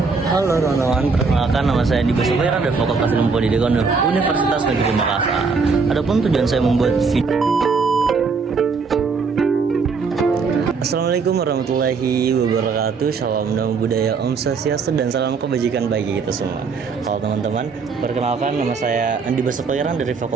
Halo teman-teman, perkenalkan nama saya Andi Basufira dari Fakultas Ilmu Pendidikan Universitas Negeri Makassar. Adapun tujuan saya membuat video. Assalamualaikum warahmatullahi wabarakatuh. Salam damai budaya, Om Swastiastu, dan salam kebajikan bagi kita semua. Halo teman-teman, perkenalkan nama saya Andi Basufira dari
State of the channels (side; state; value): left; quieter; 4.9 dB